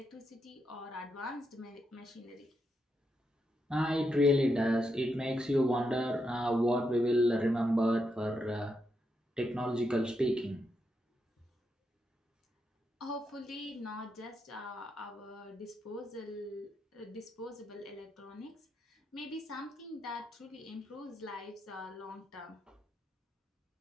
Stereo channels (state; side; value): normal; both; correlation 0.83